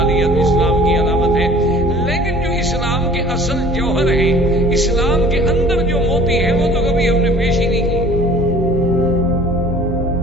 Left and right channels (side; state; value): both; normal; correlation 0.49